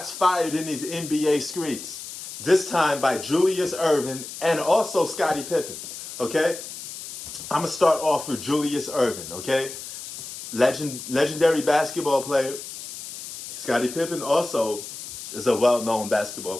fired in these NBA streets. This time by Julius Erving and also Scottie Pippen. Okay? I'm going to start off with Julius Erving. Okay? Legendary basketball player. Scottie Pippen also is a well-known basketball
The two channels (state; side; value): noise; left; hiss, 11 dB below the sound